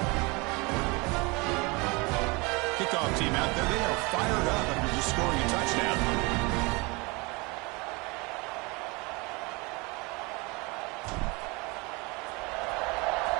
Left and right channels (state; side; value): quieter; left; 26.8 dB